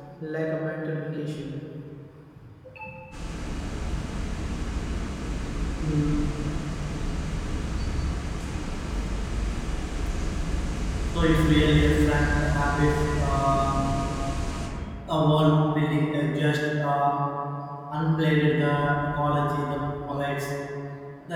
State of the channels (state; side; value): identical; both; correlation 1.00